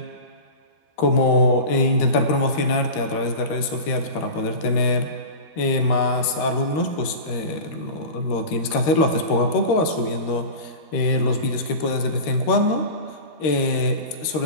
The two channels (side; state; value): right; late; 13 ms